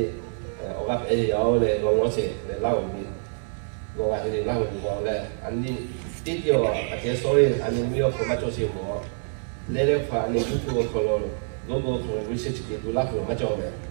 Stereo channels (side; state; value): left; silent; 61 dB below the other